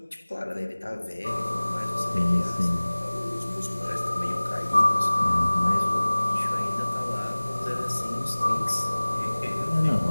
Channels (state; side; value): inverted; both; correlation -1.00